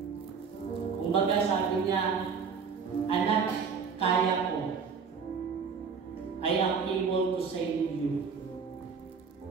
Kumbaga sabi niya, anak, kaya ko. I am able to save you.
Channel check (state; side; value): quieter; left; 5.8 dB